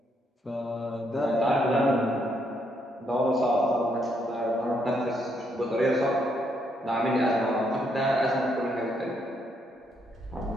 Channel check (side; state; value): both; normal; correlation 0.74